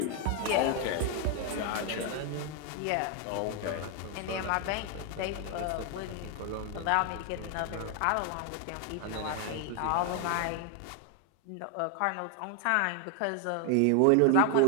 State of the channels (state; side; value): different; both; correlation 0.00